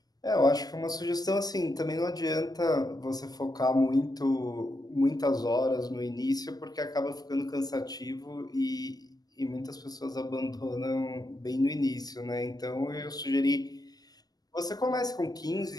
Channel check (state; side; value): late; right; 0.19 ms